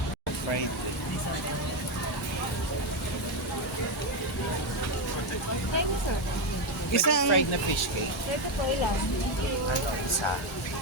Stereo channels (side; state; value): both; normal; correlation 0.09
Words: Fried. Isang... Fried na fish cake. Ito po ilan? Ano, isa.